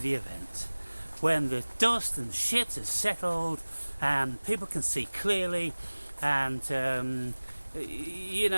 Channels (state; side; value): inverted; both; correlation -1.00